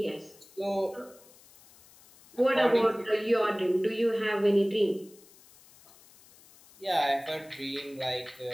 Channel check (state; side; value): noise; left; hiss, 25 dB below the sound